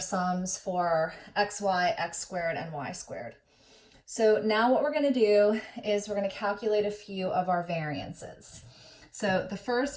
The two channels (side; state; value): both; identical; correlation 1.00